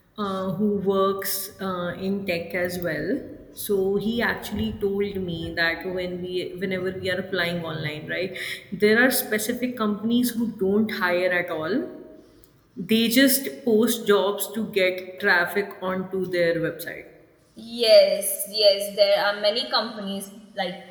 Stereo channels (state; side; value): identical; both; correlation 1.00